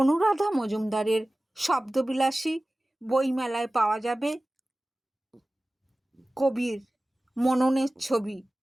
মজুমদারের শব্দবিলাসী বইমেলায় পাওয়া যাবে কবির মননের ছবি,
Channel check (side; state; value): both; normal; correlation 0.97